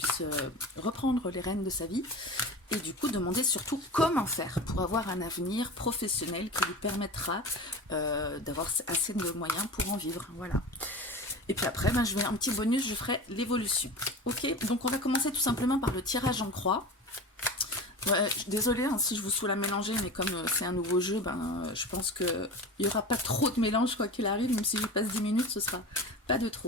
reprendre les rênes de sa vie, et du coup demander surtout comment faire pour avoir un avenir professionnel qui lui permettra d'avoir assez de moyens pour en vivre, voilà. Et puis après, ben, je vais un petit bonus, je ferai l'évolution. Ok, donc on va commencer tout simplement par le tirage en croix. Ouais, désolée hein, si je vous saoule à mélanger, mais comme c'est un nouveau jeu, ben, je pense qu'il n'y aura pas trop de mélange quoi qu'il arrive, même si je passe 10 minutes, ce sera pas de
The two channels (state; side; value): normal; both; correlation 0.31